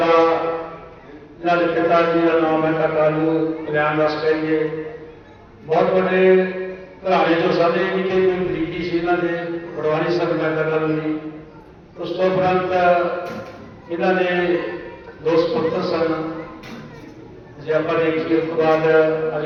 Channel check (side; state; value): both; identical; correlation 1.00